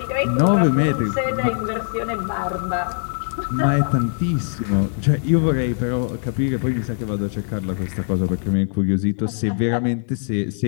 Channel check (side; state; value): right; silent; 62 dB below the other